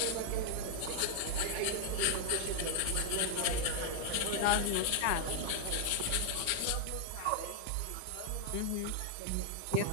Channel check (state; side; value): different; both; correlation 0.00